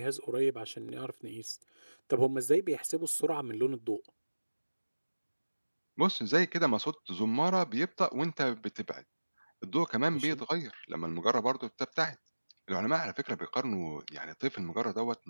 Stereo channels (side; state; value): both; inverted; correlation -1.00